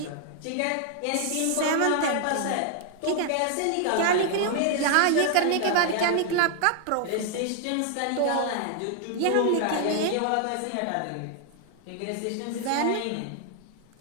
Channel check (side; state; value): both; different; correlation 0.00